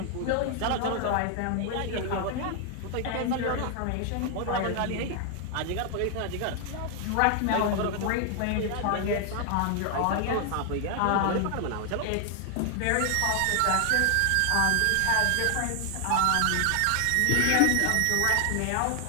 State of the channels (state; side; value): different; both; correlation 0.00